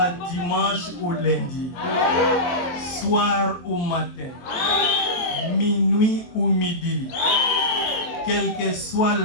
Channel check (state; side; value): late; right; 23 ms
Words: dimanche ou lundi, soir ou matin, minuit ou midi, quelle que soit